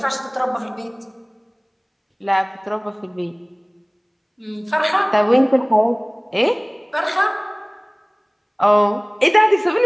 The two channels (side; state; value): both; identical; correlation 1.00